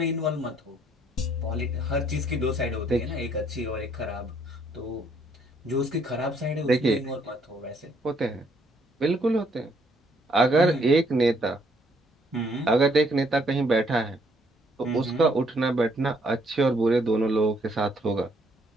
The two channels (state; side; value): normal; both; correlation 0.68